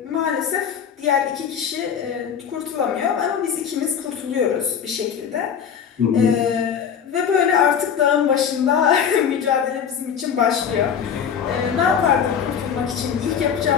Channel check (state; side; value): quieter; right; 7.7 dB